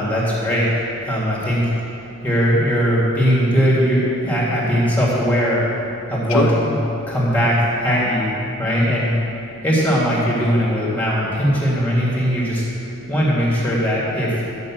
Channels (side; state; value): left; noise; hum, 26 dB below the sound